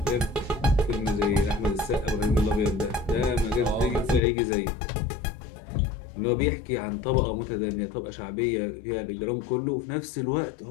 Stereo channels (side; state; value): right; drops out; at 4.2 s